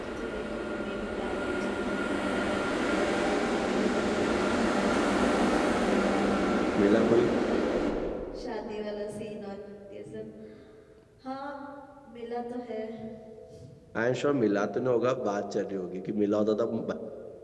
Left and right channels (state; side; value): identical; both; correlation 1.00